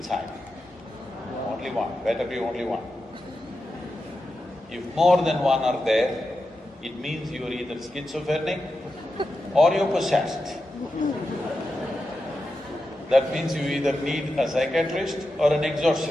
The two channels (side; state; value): both; normal; correlation 0.89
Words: Only one, better be only one. If more than one are there, it means you're either schizophrenic or you're possessed. That means you either need a psychiatrist or an